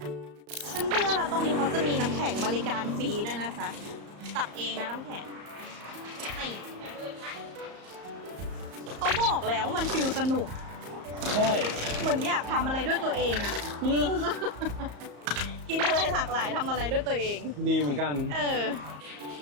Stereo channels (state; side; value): late; left; 34 ms